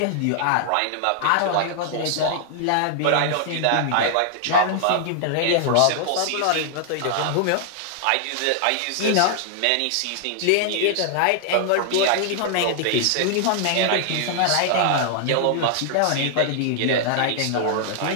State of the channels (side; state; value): both; different; correlation 0.00